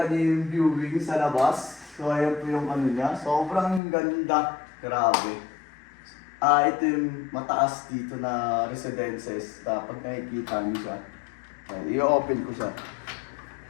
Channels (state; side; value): drops out; right; at 3.8 s